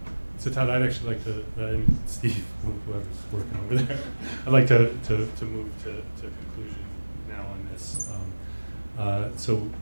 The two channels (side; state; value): both; inverted; correlation -1.00